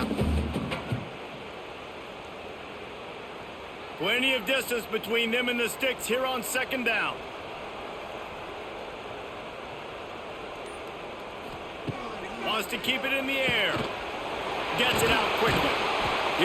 one. Plenty of distance between them and the sticks here on second down. Wants to keep it in the air. Gets it out quickly.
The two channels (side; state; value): both; identical; correlation 1.00